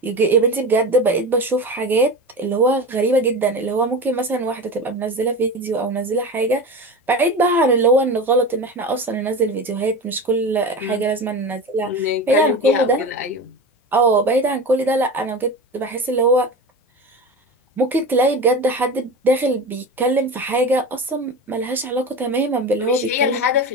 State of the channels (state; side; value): normal; both; correlation 0.27